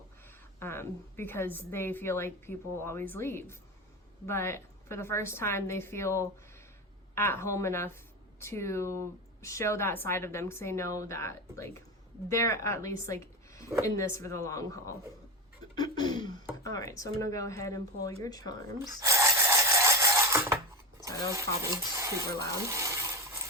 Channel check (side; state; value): both; normal; correlation 0.19